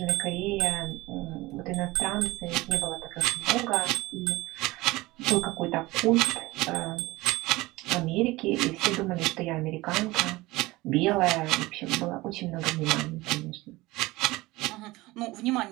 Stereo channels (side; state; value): left; quieter; 20.3 dB